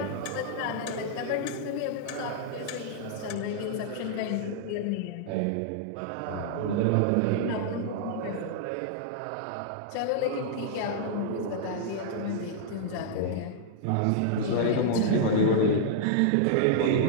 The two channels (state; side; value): different; both; correlation -0.02